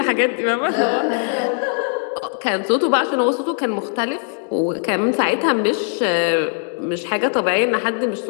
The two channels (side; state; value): right; silent; 57 dB below the other